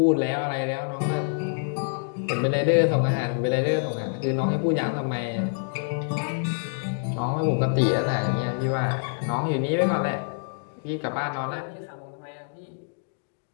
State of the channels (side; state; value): right; silent; digital silence